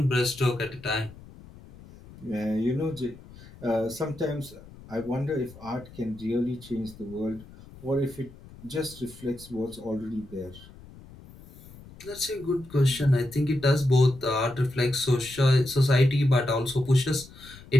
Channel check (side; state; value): left; noise; rumble, 20 dB below the sound